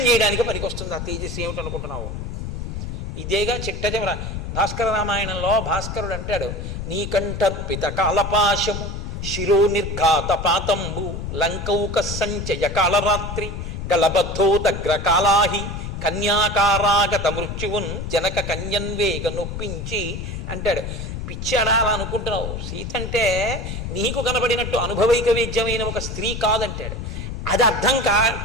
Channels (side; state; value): left; noise; rumble, 6 dB below the sound